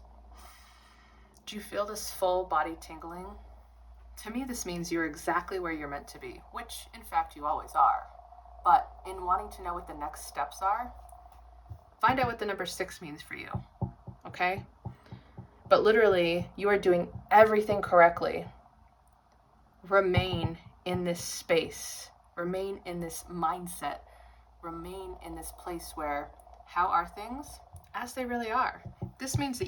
Do you feel this full body tingling? To me, this means you're exactly where you're meant to be, which in fact you always are. But in wanting to know what the next steps are, find out what the number 6 means for you, okay? But literally, you are doing everything correctly. Remain in this space. Remain in this mindset. Remain in this place where, how are things? As they really are. This means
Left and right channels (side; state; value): both; identical; correlation 1.00